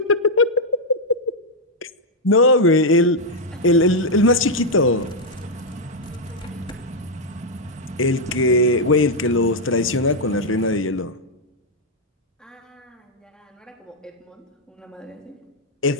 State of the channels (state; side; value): normal; both; correlation -0.02